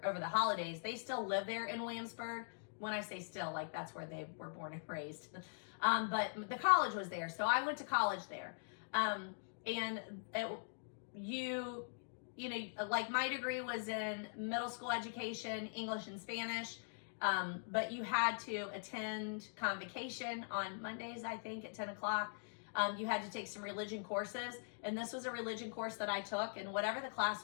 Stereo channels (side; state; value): right; silent; digital silence